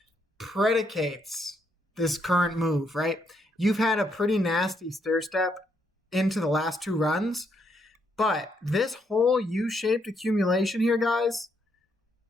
predicates this current move, right? You've had a pretty nasty stair step into the last 2 runs, but this whole U-shaped accumulation here, guys,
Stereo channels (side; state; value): both; normal; correlation 0.75